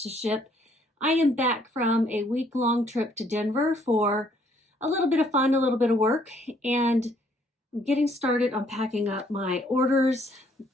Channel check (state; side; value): normal; both; correlation 0.65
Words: to ship. I am back from a week-long trip to Denver for a little bit of fun, a little bit of work, and I'm getting started on packing up my orders